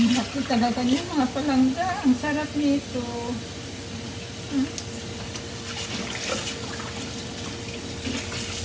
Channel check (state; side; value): identical; both; correlation 1.00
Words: laki talaga niya mga palangga. Ang sarap nito.